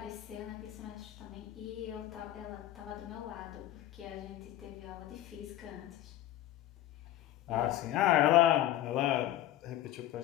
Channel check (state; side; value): quieter; right; 13.5 dB